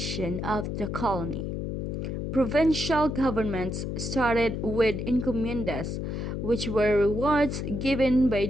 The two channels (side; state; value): left; noise; hum, 3 dB below the sound